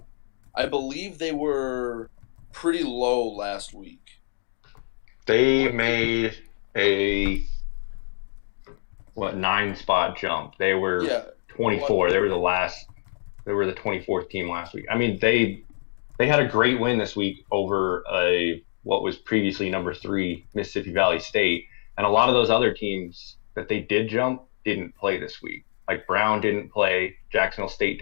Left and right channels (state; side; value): silent; right; digital silence